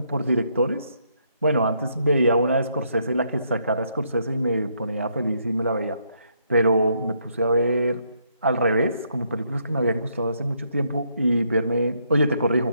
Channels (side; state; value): both; inverted; correlation -0.74